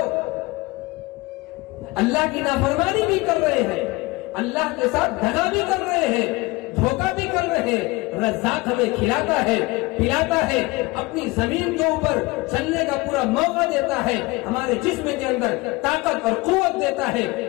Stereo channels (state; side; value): quieter; right; 22.8 dB